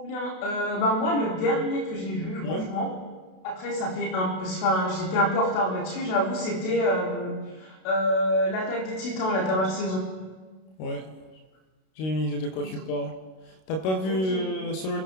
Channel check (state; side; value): late; right; 32 ms